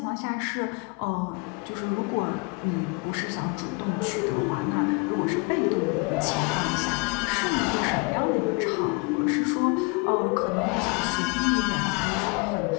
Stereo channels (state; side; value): quieter; right; 30.2 dB